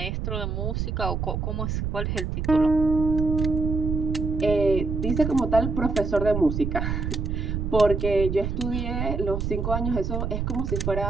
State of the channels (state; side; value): noise; right; rumble, 2 dB below the sound